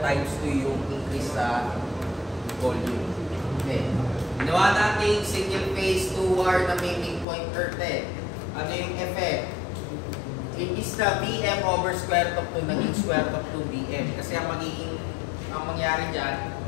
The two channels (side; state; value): right; drops out; at 7.2 s